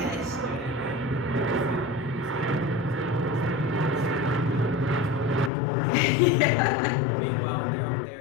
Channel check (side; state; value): right; drops out; at 5.5 s